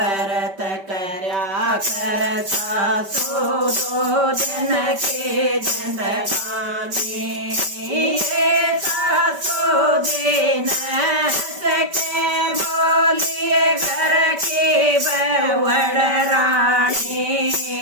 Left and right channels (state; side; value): late; left; 5.2 ms